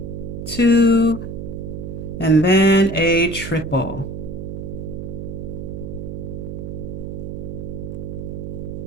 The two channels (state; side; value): noise; right; hum, 7 dB below the sound